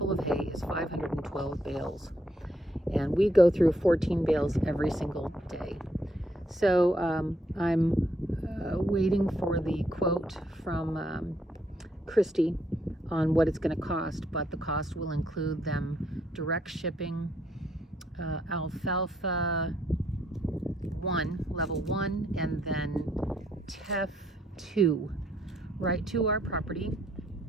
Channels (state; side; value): normal; both; correlation 0.72